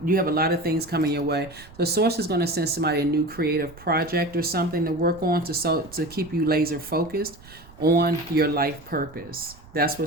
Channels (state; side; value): noise; right; rumble, 21 dB below the sound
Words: You have a lot of things coming your way. The source is going to send somebody a new creative project or something to work on to keep you laser focused on your life purpose. That's what